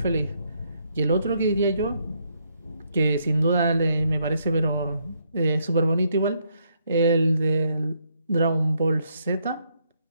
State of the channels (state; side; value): inverted; both; correlation -0.74